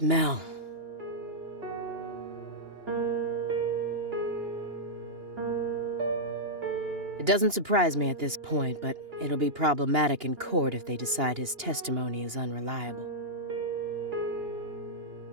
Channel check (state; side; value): late; left; 2.8 ms